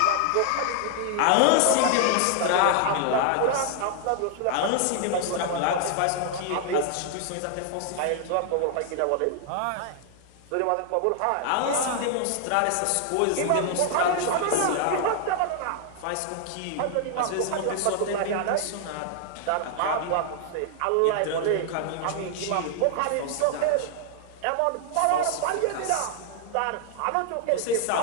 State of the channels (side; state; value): both; different; correlation 0.00